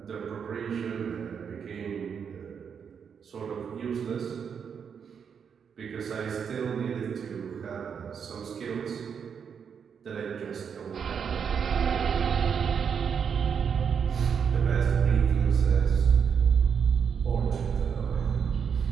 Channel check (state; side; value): quieter; left; 7.0 dB